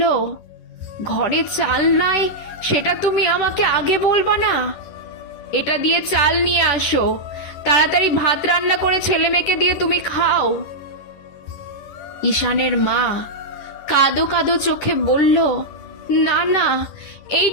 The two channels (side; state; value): right; late; 10 ms